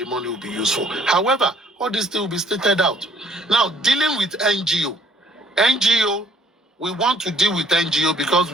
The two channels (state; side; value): normal; both; correlation 0.61